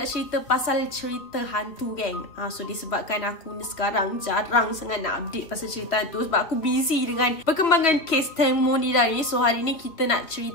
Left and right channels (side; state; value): right; late; 2.8 ms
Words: cerita pasal cerita hantu geng. So disebabkan aku ni sekarang jarang sangat nak update pasal cerita hantu sebab aku busy dengan perkembangan kes testimoni dah ni. So hari ni kita nak